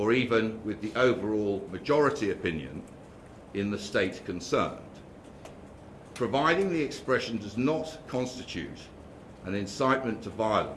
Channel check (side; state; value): both; identical; correlation 1.00